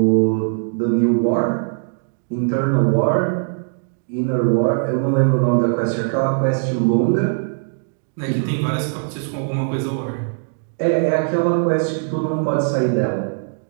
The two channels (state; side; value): silent; left; digital silence